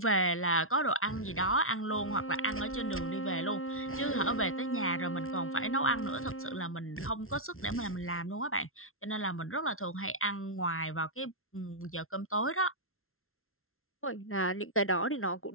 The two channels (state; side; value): late; right; 0.62 ms